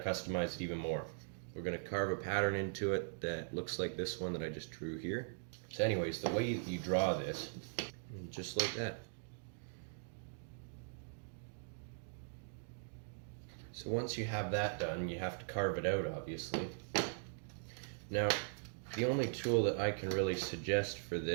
it even more. We're going to carve a pattern into it that looks like this one that I just drew here. So anyways, the way you draw this, just like that. So once you have that done, you have to carve it out, obviously. Now, the only tool that I can really suggest for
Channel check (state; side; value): silent; left; digital silence